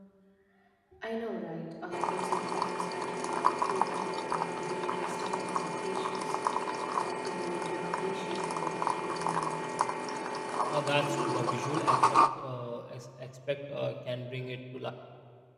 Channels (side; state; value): both; identical; correlation 1.00